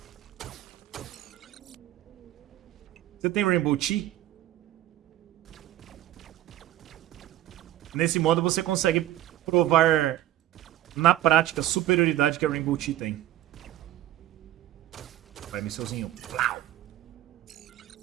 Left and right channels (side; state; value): left; quieter; 13.8 dB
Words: Você tem Rainbow Tea? Nesse modo você consegue provar na prática a superioridade que a Rainbow Tea tem. Vai, missilzinho. Plau.